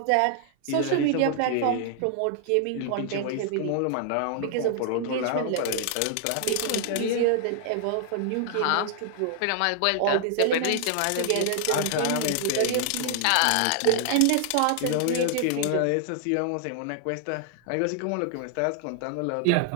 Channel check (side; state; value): both; different; correlation 0.00